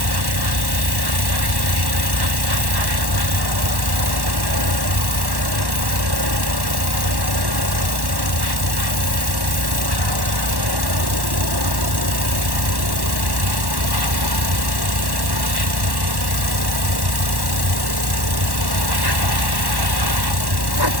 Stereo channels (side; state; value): left; late; 1.1 ms